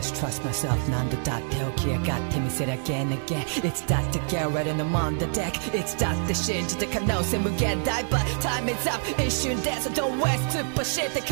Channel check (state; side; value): silent; left; 61 dB below the other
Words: trust myself. 난도 다 태워 기회 같아見せる again again. It's that to get right and I'm on the deck. It's that the 信じた可能性無限大 But time is up 一瞬で So don't waste super shit って